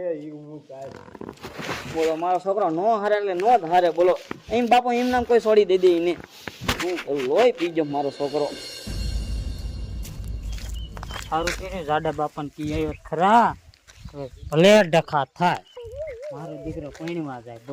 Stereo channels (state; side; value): identical; both; correlation 1.00